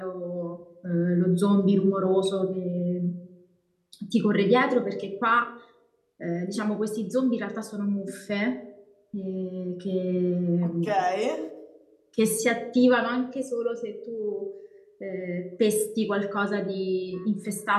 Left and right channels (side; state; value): both; identical; correlation 1.00